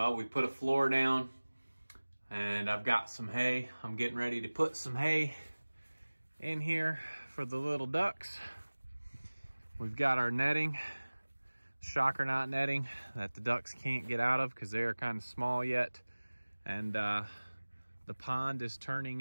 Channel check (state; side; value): inverted; both; correlation -1.00